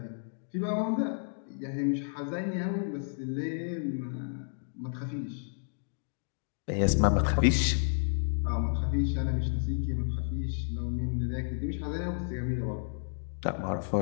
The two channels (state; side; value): silent; right; digital silence